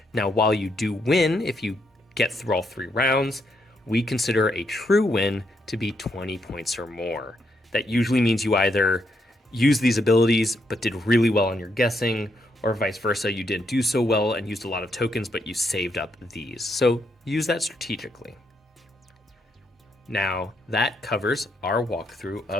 Now, while you do win, if you get through all 3 rounds, we consider a true win to be 20 points or more. That usually means you either use these abilities but did really well on your guessing, or vice versa, you didn't do so well and used a lot of tokens but you saved up these. So use that strategically. Now that covers our walkthrough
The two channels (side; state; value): both; normal; correlation 0.77